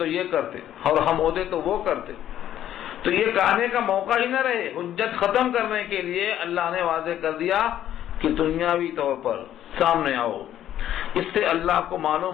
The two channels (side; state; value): right; quieter; 11.5 dB